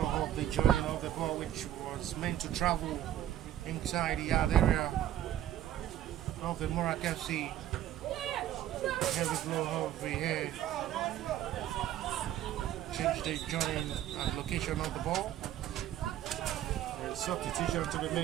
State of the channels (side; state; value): left; quieter; 12.2 dB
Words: of the joining of the ball, which was meant to travel inside the yard area of the Morak FC. Heavy blow of the hair. Change the joining and location of the ball. There's substitution to be